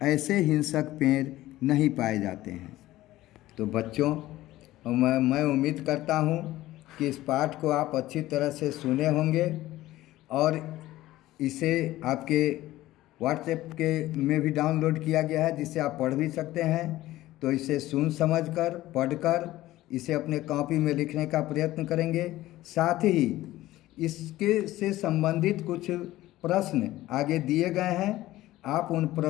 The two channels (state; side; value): quieter; right; 16.1 dB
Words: ऐसे हिंसक पेड़ नहीं पाए जाते हैं। तो बच्चों, मैं उम्मीद करता हूँ कि इस पाठ को आप अच्छी तरह से सुने होंगे और इसे आपके व्हाट्सएप के में भी डाउनलोड किया गया है, जिससे आप पढ़ भी सकते हैं। तो इसे सुन समझकर पढ़कर इसे अपने कॉपी में लिखने का प्रयत्न करेंगे। साथ ही इसके से संबंधित कुछ प्रश्न आगे दिए गए हैं, आप उन